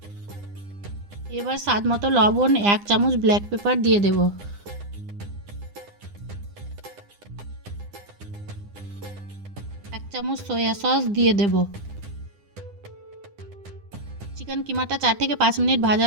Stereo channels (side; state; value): left; late; 9.9 ms